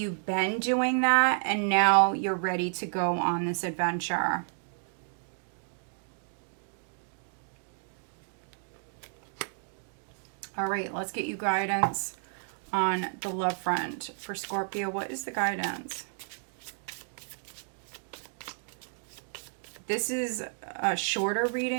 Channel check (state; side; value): silent; left; digital silence